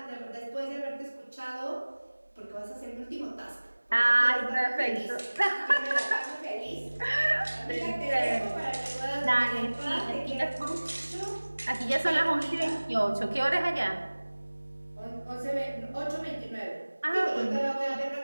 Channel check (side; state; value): both; inverted; correlation -1.00